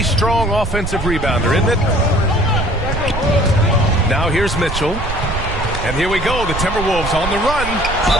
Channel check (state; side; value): noise; right; rumble, 6 dB below the sound